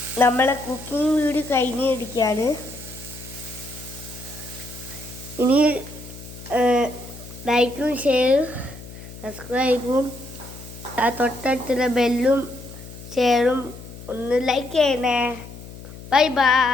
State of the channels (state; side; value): noise; left; hum, 15 dB below the sound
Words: നമ്മളെ കുക്കിംഗ് വീഡിയോ കഴിഞ്ഞിരിക്കുകയാണ്. ഇനി ലൈക്കും ഷെയറും സബ്സ്ക്രൈബും ആ തൊട്ടടുത്തുള്ള ബെല്ലും ഷെയറും ഒന്ന് ലൈക്ക് ചെയ്യണേ. Bye